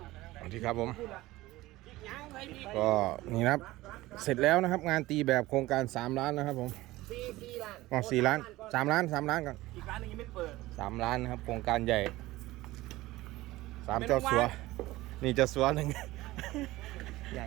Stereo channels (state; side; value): quieter; left; 18.1 dB